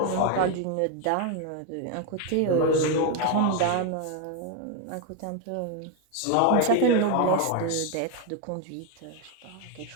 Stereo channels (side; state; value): both; different; correlation 0.01